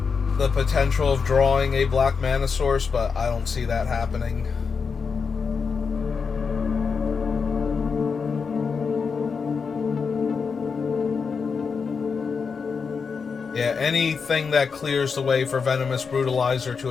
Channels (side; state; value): right; quieter; 5.5 dB